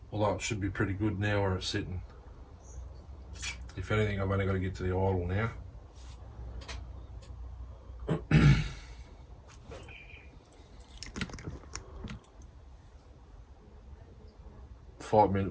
Although it should be pretty good now where it's sitting. If anything, I've only got to get to the idle now.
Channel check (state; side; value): identical; both; correlation 1.00